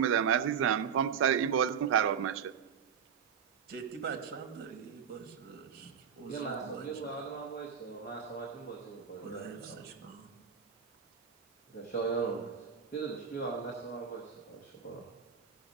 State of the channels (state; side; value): quieter; left; 7.5 dB